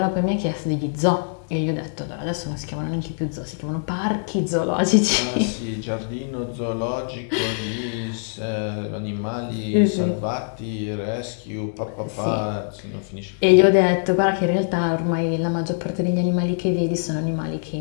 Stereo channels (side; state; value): right; silent; digital silence